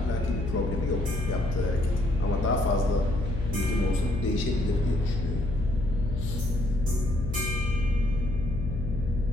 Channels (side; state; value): left; noise; hum, 4 dB below the sound